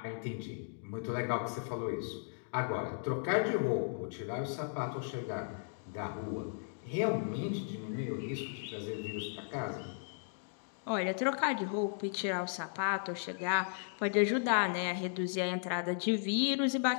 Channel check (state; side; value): silent; right; digital silence